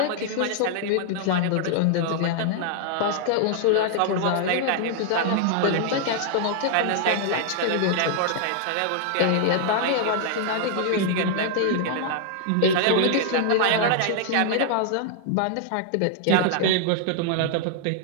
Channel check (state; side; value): different; both; correlation -0.01